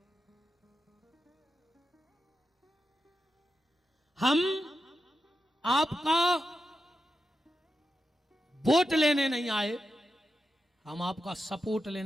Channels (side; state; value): both; normal; correlation 0.89